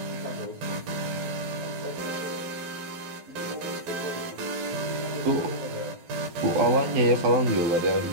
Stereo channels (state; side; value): late; left; 12 ms